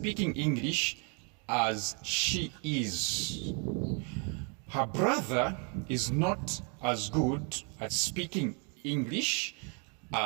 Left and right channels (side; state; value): left; quieter; 36.6 dB